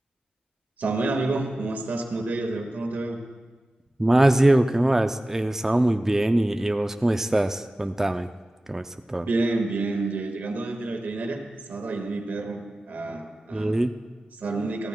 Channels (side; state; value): both; normal; correlation 0.96